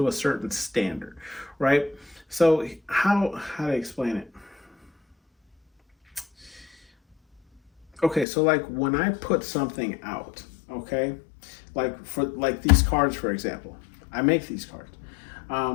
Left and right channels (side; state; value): right; drops out; at 8.2 s